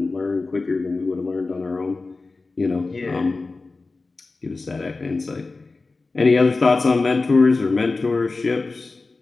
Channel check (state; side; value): quieter; right; 3.7 dB